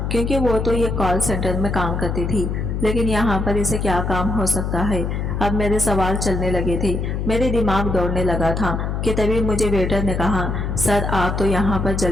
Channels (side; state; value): left; noise; hum, 2 dB below the sound